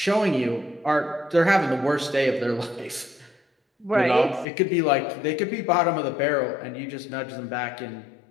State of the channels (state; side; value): drops out; right; at 4.5 s